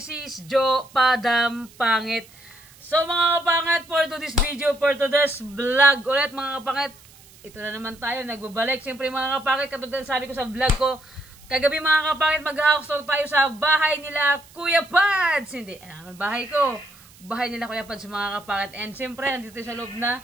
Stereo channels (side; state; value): right; noise; hiss, 24 dB below the sound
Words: is Joe Padam Pangit. So mga kapangit, for today's video, for today's vlog ulit mga kapangit, ito na naman tayo, nagbabalik. Siyempre mga kapangit, katulad na sabi ko sa vlog ko, kagabi mga kapangit, mag-house tour tayo sa bahay nila Kuya Pads. Hindi, bahay ko. Bahay nila Kuya Pads mga kapangit. And siyempre, nandito sa loob na.